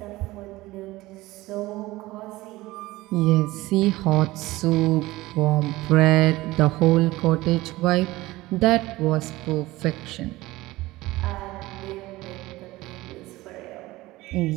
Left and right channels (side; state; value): left; quieter; 18.8 dB